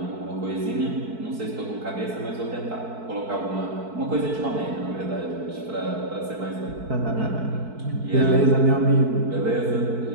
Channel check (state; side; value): late; left; 4.6 ms